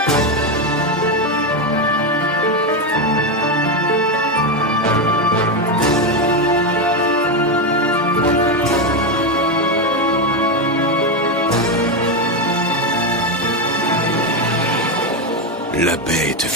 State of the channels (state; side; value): normal; both; correlation 0.09